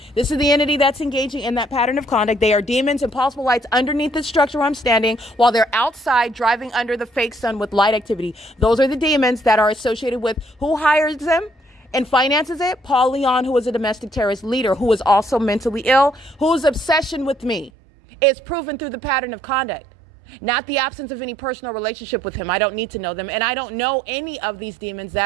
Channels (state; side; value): drops out; left; at 17.7 s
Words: This is the entity that's engaging in that pattern of conduct. They are demons and possible lights underneath the structure where I'm standing while they're outside driving under the fake sun with light activity. Those are the demons that are associated with who hires them and finances it. Paul Leon, who is a domestic terrorist leader, who is also mentally ill, whose obsession with me is proven through the pattern of conduct. Not the absence of any personal relationship with him. I don't need to know them. And I don't know any of these demons